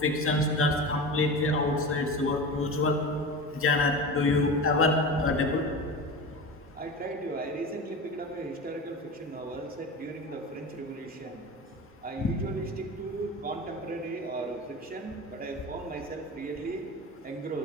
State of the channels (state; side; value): normal; both; correlation 0.29